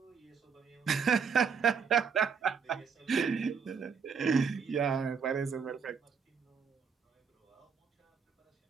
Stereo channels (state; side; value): quieter; left; 6.1 dB